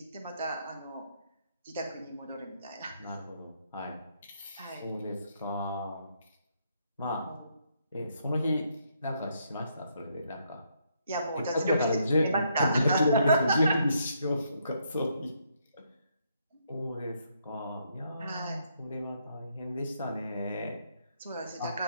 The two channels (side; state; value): both; inverted; correlation -0.74